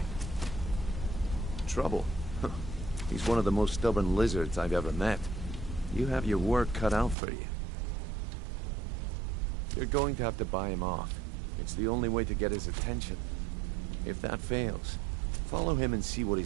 Trouble? He's one of the most stubborn lizards I've ever met. You have your work cut out for you. You're going to have to buy him off. It's the only way to get his attention. If that fails, follow him and see what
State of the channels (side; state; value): left; drops out; at 7.2 s